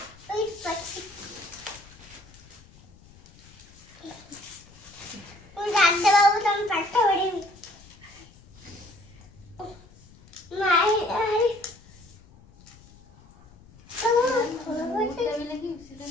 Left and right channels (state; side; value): noise; left; rumble, 24 dB below the sound